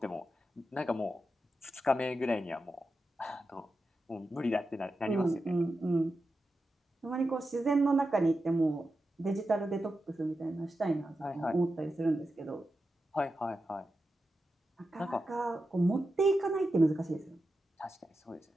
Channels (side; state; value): both; normal; correlation 0.90